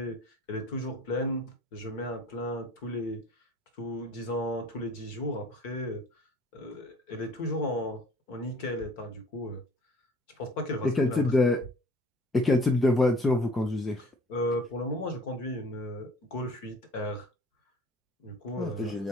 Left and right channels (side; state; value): both; normal; correlation 0.51